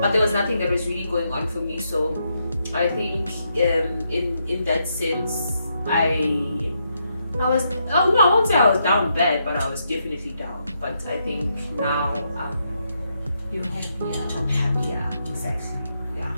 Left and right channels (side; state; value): both; inverted; correlation -0.80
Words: but there was nothing that was really going on for me. So I think in that sense, I was, I won't say I was down bad, but I was definitely down. But I think now You're happier. I'm happier, exactly, yeah.